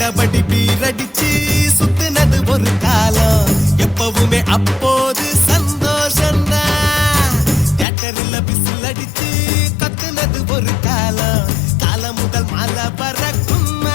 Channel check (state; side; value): drops out; right; at 7.9 s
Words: பீரடிச்சு சுத்தினது ஒரு காலம், எப்பவுமே அப்போது சந்தோஷம்தான். தியேட்டர்ல பிசில் அடிச்சு கத்துனது ஒரு காலம், காலம் முதல் மாலை பறக்கும்